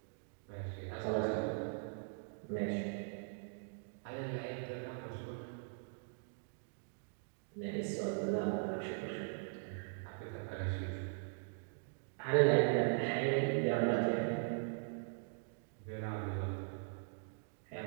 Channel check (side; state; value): left; silent; digital silence